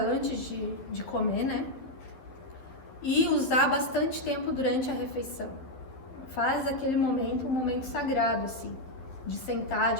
de comer, né? E usar bastante tempo durante a refeição. Faz aquele momento um momento sagrado, assim, de sentar,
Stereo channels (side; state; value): right; late; 12 ms